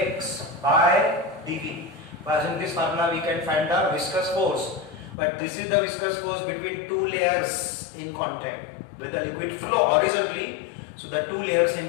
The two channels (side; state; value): right; drops out; at 5.2 s